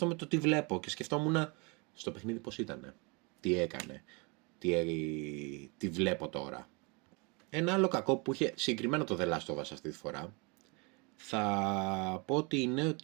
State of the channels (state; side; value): quieter; left; 30.2 dB